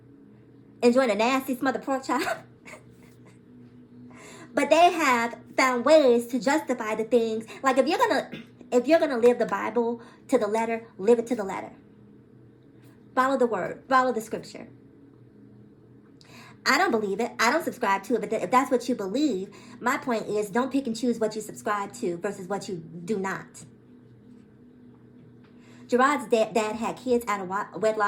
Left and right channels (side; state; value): both; identical; correlation 1.00